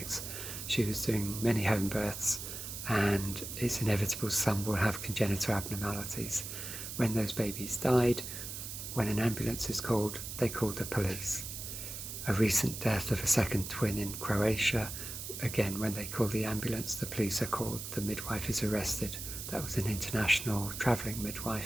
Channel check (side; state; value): right; noise; hiss, 8 dB below the sound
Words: She was doing many home births, and it's inevitable some will have congenital abnormalities. When those babies died, when an ambulance is called, they called the police. A recent death of a second twin in Croatia, again, when they call the ambulance, the police are called, the midwife is arrested. That was an international travelling